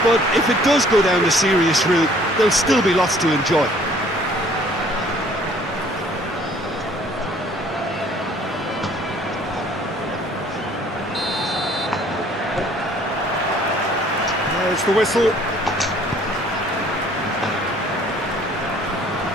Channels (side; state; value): both; normal; correlation 0.57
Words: but if it does go down the serious route, there'll still be lots to enjoy. There's the whistle.